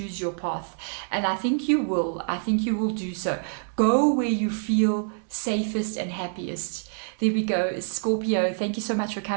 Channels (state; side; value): silent; left; digital silence